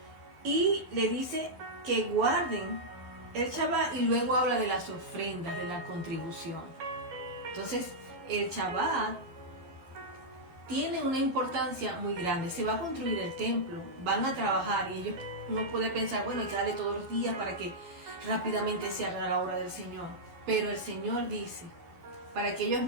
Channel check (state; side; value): late; left; 12 ms